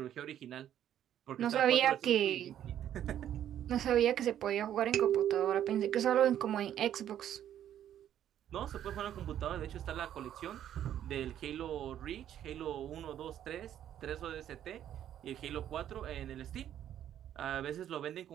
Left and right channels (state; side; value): quieter; left; 10.8 dB